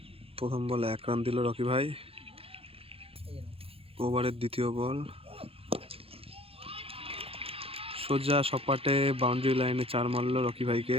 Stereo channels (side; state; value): left; late; 0.27 ms